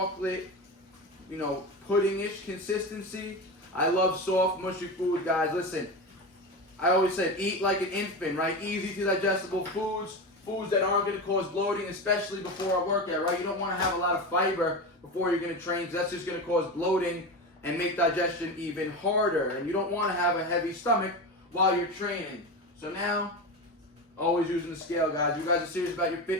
pudding-ish consistency. I love soft, mushy food, guys. Listen, I always said eat like an infant, right? Easy to digestible foods, foods that aren't going to cause bloating, especially before a workout, right? You don't want to have a lot of fiber before you're going to train, because that's just going to cause bloating and make digestion even harder. And you don't want to have a heavy stomach while you're training. So now, always using the scale, guys. You guys are serious about your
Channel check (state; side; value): normal; both; correlation 0.22